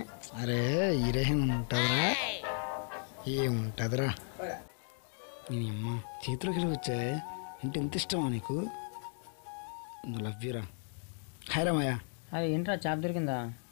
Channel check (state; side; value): silent; right; 54 dB below the other